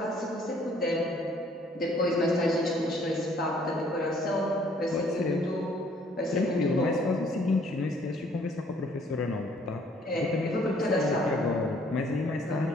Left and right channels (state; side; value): normal; both; correlation 0.61